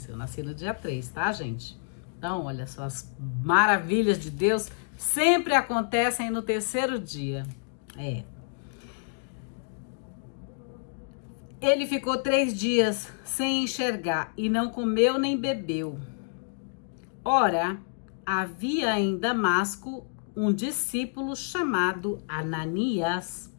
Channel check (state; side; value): silent; right; digital silence